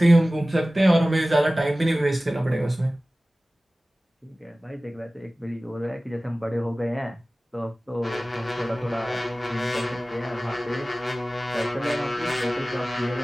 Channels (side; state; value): both; normal; correlation 0.97